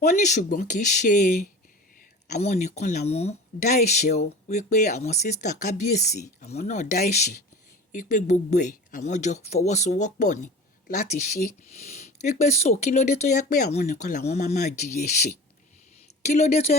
Wọ́n ní ṣùgbọ́n kì í ṣe àwọn nìkan làwọn dá ẹ̀ṣẹ̀ o, wípé àwọn sísítà kábíyèsí àwọn náà dá ẹ̀ṣẹ̀, wípé gbogbo ẹ̀ àwọn jọ fọwọ́sowọ́pọ̀ ni láti ṣe, wípé so kí ló dé tó yẹ pé àwọn nìkan làwọn máa jìyà ẹ̀ṣẹ̀, kí ló dé tó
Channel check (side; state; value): both; normal; correlation 0.36